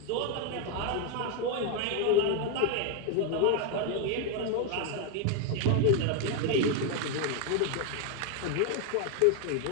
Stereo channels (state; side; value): different; both; correlation 0.01